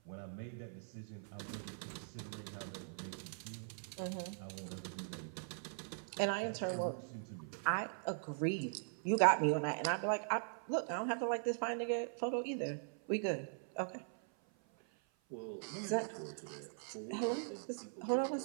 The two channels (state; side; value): silent; left; 50 dB below the other